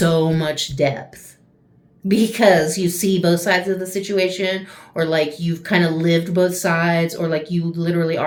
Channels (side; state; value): both; identical; correlation 1.00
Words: much depth. Because you see both sides of the situation, or like you've kind of lived both sides, or like you literally